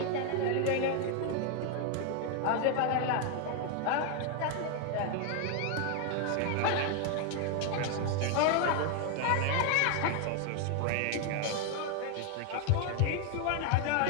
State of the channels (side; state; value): both; different; correlation 0.01